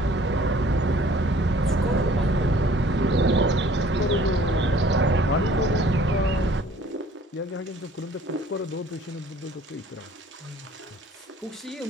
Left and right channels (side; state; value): both; normal; correlation 0.54